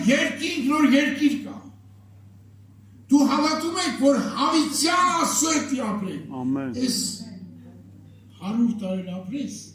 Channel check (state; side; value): identical; both; correlation 1.00